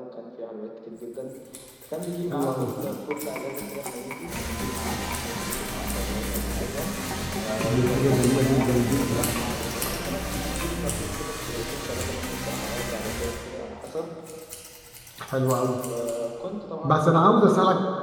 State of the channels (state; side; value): identical; both; correlation 1.00